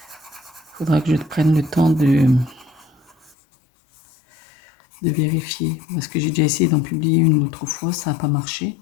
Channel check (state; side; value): drops out; right; at 3.4 s